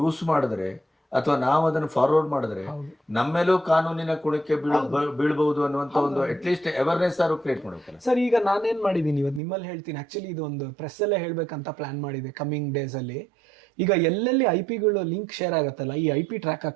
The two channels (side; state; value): left; drops out; at 9.4 s